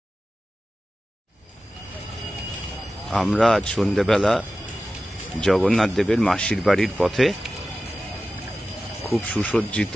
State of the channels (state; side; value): normal; both; correlation 0.94